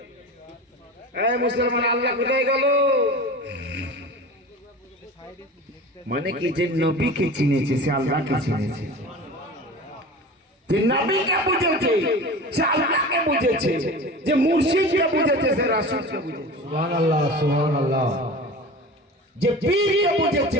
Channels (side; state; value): both; normal; correlation 0.34